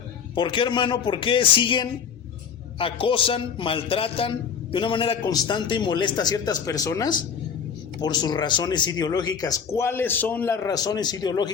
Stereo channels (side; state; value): right; quieter; 6.9 dB